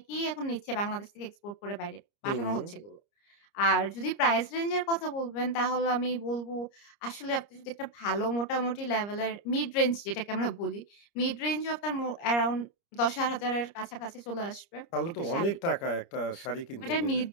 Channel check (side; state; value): right; late; 30 ms